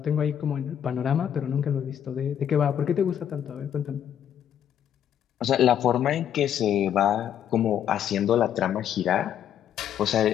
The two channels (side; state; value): right; quieter; 9.6 dB